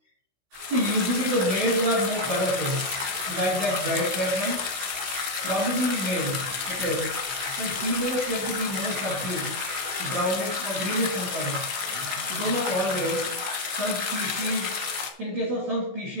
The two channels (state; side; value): late; left; 16 ms